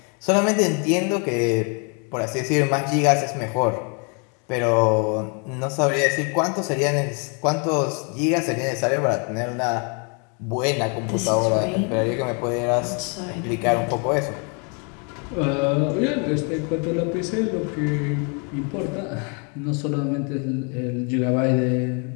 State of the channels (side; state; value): right; quieter; 36.5 dB